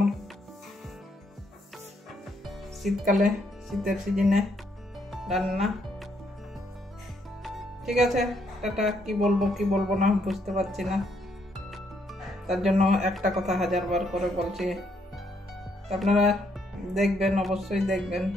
শীতকালে, শীতের সিজনে রান্না। ঠিক আছে, টাটা। কি বলবো না বুঝতে পারছি না, তার জন্য একটা কথা 1000বার করে বলছি। আপনারা দেখবেন, অবশ্যই দেখবেন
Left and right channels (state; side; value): normal; both; correlation 0.73